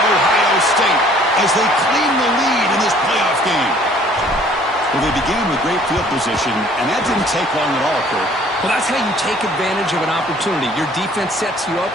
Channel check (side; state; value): both; normal; correlation 0.56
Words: Ohio State, as they claim the lead in this playoff game. Well, they began with great field position, and that didn't take long at all, Kurt. Well, that's how you take advantage of an opportunity. Your defense sets you up